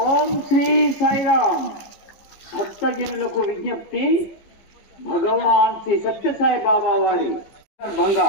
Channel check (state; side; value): late; right; 15 ms